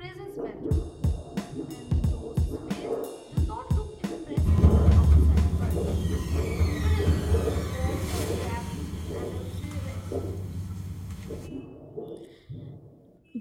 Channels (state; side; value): identical; both; correlation 1.00